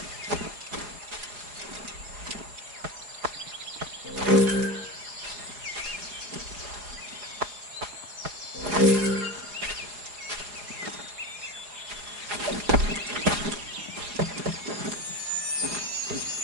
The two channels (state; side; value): late; left; 4.8 ms